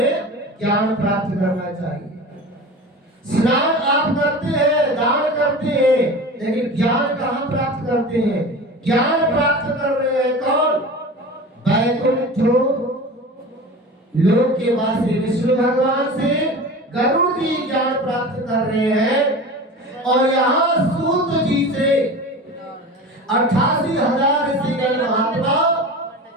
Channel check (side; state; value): both; normal; correlation 0.33